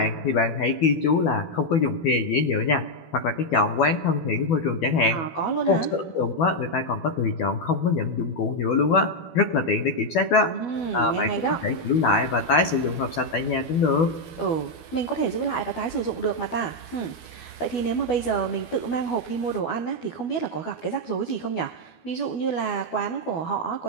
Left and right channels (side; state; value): right; late; 12 ms